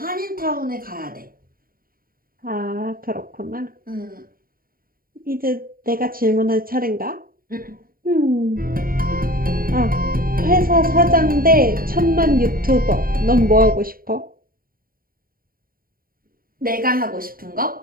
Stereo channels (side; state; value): left; late; 0.42 ms